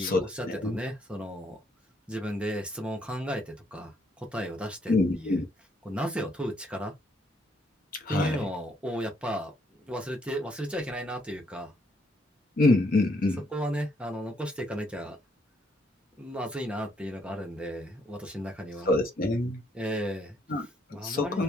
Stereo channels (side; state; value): both; normal; correlation 0.71